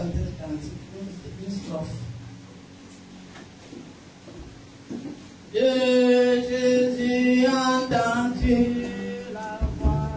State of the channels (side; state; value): both; identical; correlation 1.00